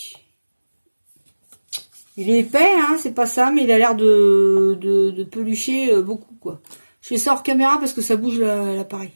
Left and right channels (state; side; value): inverted; both; correlation -1.00